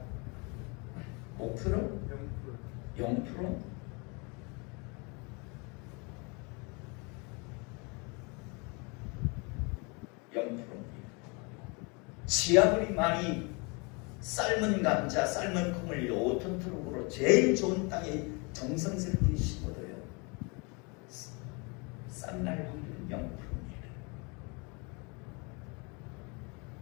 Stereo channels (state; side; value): quieter; right; 30.9 dB